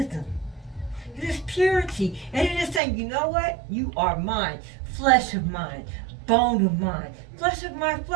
It is purity. And it is saying, you know what? You are mine. Flesh of mine. Bone of mine. Flesh of my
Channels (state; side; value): drops out; left; at 2.8 s